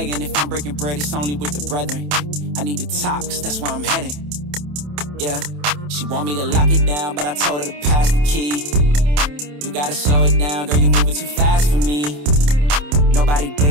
If I'm breaking bread, it's only with the brethren. I need to top, cause that's where I'm heading. Yeah, she want me to lock it down, but I told her to pass the key. You gotta slow it down, girl, you moving too fast for me. Nobody did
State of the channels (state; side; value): late; left; 27 ms